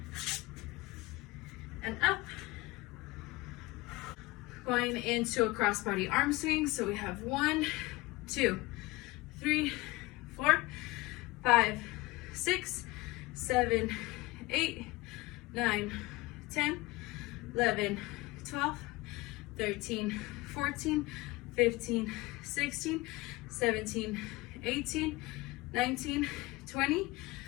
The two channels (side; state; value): right; quieter; 21.5 dB